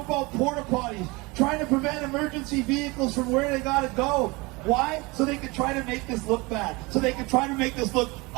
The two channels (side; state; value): left; quieter; 24.8 dB